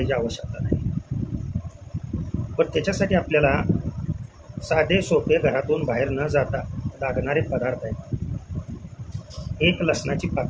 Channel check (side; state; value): both; identical; correlation 1.00